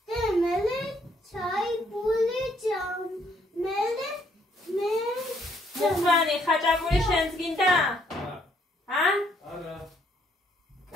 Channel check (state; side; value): normal; both; correlation 0.68